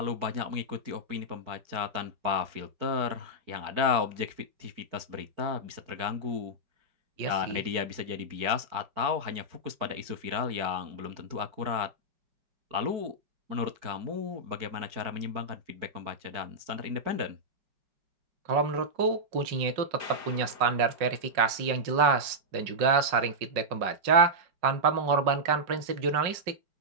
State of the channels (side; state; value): left; late; 5.5 ms